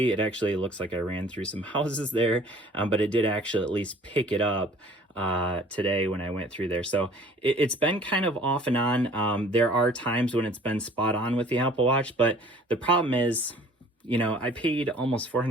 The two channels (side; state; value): both; normal; correlation 0.51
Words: it actually looks like I ran through some houses there, but it did actually at least pick it up today when I went through there. So it's been kind of off and on. There are times when it's been spot on with the Apple Watch, but the problem is, you know, I paid almost